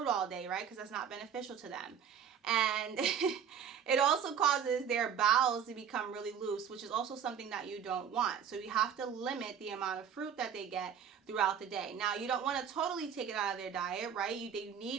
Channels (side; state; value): left; quieter; 7.9 dB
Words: all day, right? Because that's not beneficial to them. And it also causes their bowels to become really loose, which is also something that you don't want. So you have to limit the amount of fruit that they get throughout the day. Now, you don't want to totally take it out of their diet, right? They